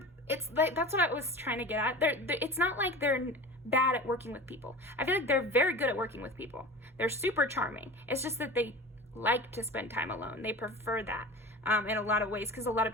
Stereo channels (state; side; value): normal; both; correlation 0.35